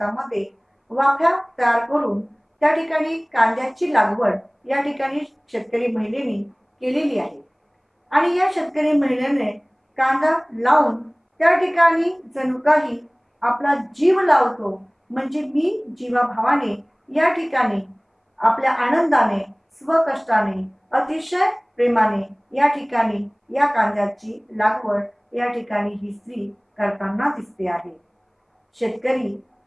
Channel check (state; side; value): identical; both; correlation 1.00